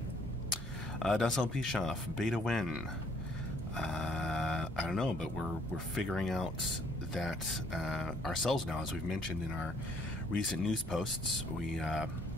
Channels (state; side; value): normal; both; correlation 0.63